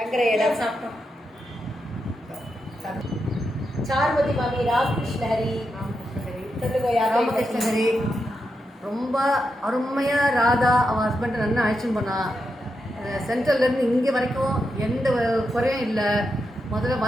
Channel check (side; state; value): both; normal; correlation 0.86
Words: இடம் சாப்பிட்டோம். சாருமதி மாமி, ராமகிருஷ்ண ஹரி சொல்லுங்க. ராமகிருஷ்ண ஹரி ரொம்ப அருமையாக ராதா அவன் ஹஸ்பண்டை நல்லா அழைச்சின்னு போனான். சென்ட்ரல்லேருந்து இங்கே வரைக்கும் எந்த குறையும் இல்லை. முதல்ல